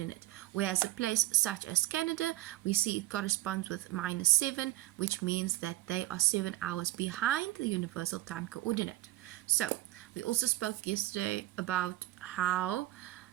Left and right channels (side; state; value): left; quieter; 17.2 dB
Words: Whereas a place such as Canada, we see it corresponds with -7, which means that they are 7 hours behind the universal time coordinate. So we also spoke yesterday about how